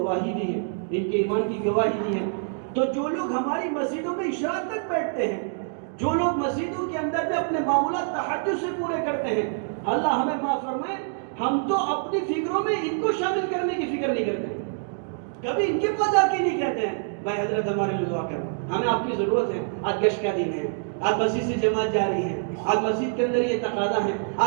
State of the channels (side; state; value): left; silent; digital silence